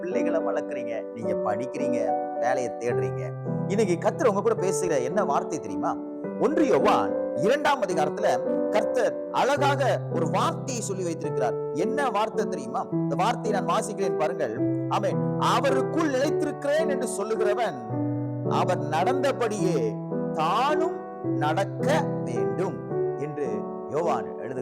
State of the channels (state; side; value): identical; both; correlation 1.00